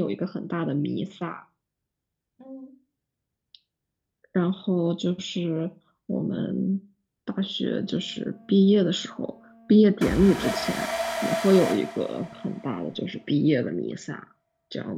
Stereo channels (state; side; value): identical; both; correlation 1.00